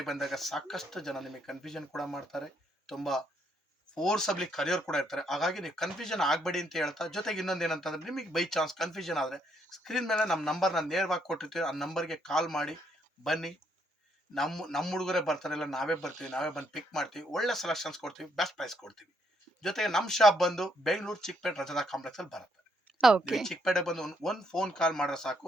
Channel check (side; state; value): both; normal; correlation 0.73